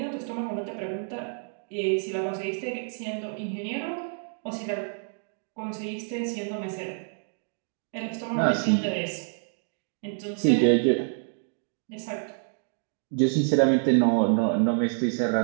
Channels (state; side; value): silent; left; 59 dB below the other